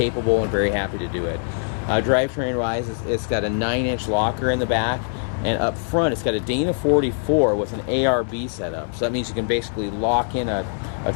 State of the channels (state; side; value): silent; right; 64 dB below the other